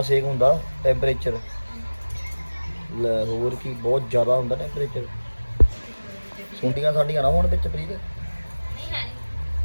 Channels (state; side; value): inverted; both; correlation -1.00